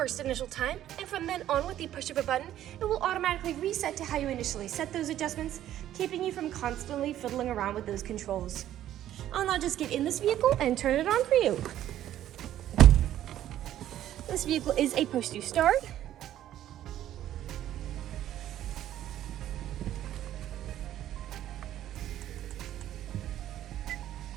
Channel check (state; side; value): quieter; left; 12.2 dB